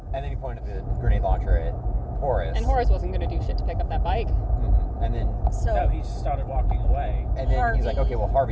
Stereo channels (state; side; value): identical; both; correlation 1.00